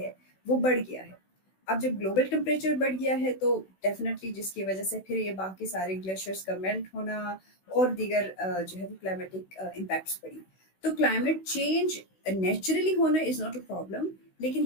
وہ بڑھ گیا ہے۔ اب جب گلوبل ٹمپریچر بڑھ گیا ہے تو ڈیفینیٹلی جس کی وجہ سے پھر یہ باقی سارے گلیشیئرس کا میلٹ ہونا اور دیگر جو ہے وہ کلائمیٹک امپیکٹس پڑی۔ تو کلائمیٹ چینج نیچرلی ہونا از ناٹ اے پرابلم، لیکن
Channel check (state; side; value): late; right; 16 ms